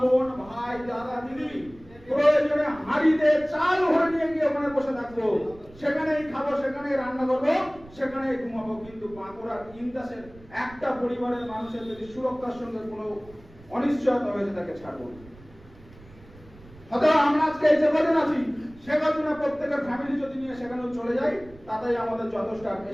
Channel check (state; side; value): noise; right; rumble, 22 dB below the sound